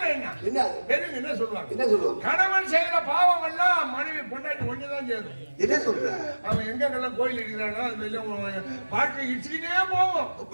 என்ன? பெரியவங்க என்ன சொல்லுவாங்க? கணவன் செய்யற பாவம் எல்லாம் மனைவி பொண்டாட்டி ஒண்ணுதான் சேரும். என்ன சொல்ற? அவன் எங்கெல்லாம் கோயில் இருக்கிறானோ அது வெளியே வாழ்க்கை இடிச்சுக்கிட்டே போவோம்.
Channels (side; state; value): both; inverted; correlation -1.00